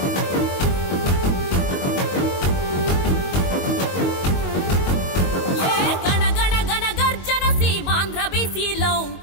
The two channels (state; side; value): late; right; 22 ms